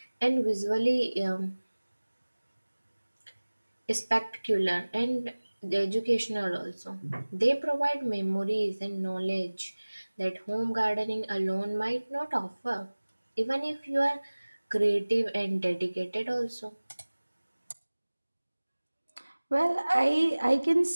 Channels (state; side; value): inverted; both; correlation -1.00